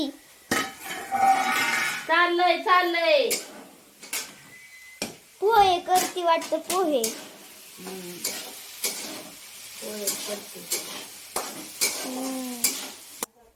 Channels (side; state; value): both; identical; correlation 1.00